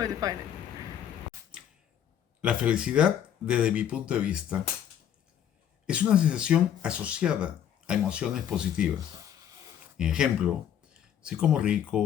I define it. La felicidad, desde mi punto de vista, es una sensación asociada a emociones positivas. Ejemplo, si como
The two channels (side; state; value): right; quieter; 9.7 dB